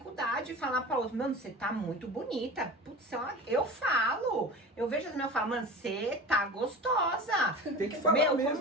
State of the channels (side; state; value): both; normal; correlation 0.34